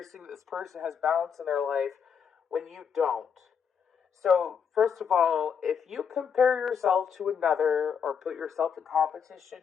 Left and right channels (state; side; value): quieter; right; 7.0 dB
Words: seeing that this person has balance in their life when you don't. So, first of all, if you compare yourself to another, or put yourself in competition